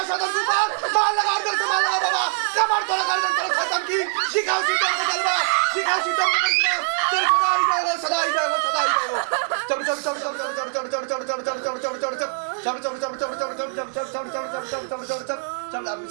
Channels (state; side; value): silent; left; digital silence